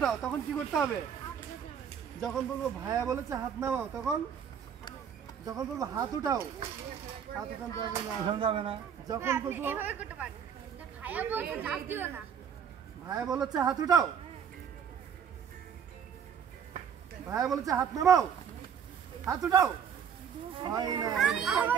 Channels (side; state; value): left; quieter; 7.8 dB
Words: তখন কি করতে হবে? যখন বলবো ভাইয়া বলেছে হাত নামাও তখন যখন বলবো হাত উঠাও হাত উঠাতে হবে না। যখন বলবো ভাইয়া বলেছে হাত উঠাও ভাইয়া বলেছে হাত নামাও হাত উঠাও হয় না।